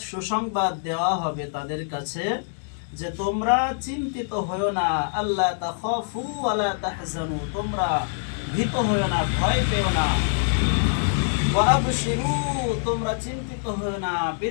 সুসংবাদ দেওয়া হবে তাদের কাছে যে তোমরা চিন্তিত হয়ো না, আল্লাহ তাখাফু ওয়ালা তাহজানু, তোমরা ভীত হয়ো না, ভয় পেও না, ওয়া আবশিরু, তোমরা চিন্তিত হয়ো না,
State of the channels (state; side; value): silent; right; 62 dB below the other